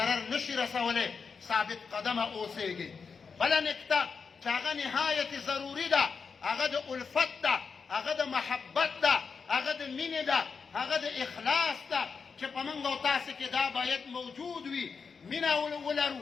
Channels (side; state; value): right; quieter; 5.4 dB